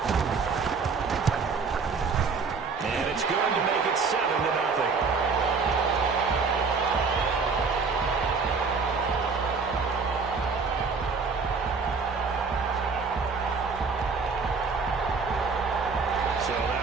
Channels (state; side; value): quieter; left; 4.9 dB